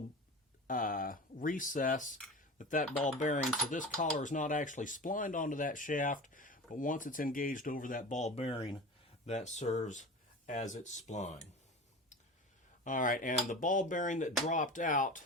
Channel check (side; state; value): both; normal; correlation 0.33